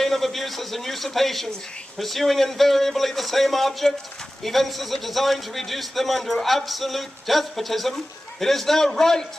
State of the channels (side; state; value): both; normal; correlation 0.95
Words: of abuses and usurpations, pursuing invariably the same object, evinces a design to reduce them under absolute despotism, it is their right,